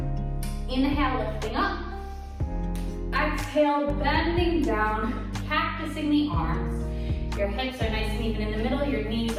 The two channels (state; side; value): identical; both; correlation 1.00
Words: Inhale, lifting up. Exhale, bending down, cactusing the arms. Your hips are nice and even in the middle. Your knees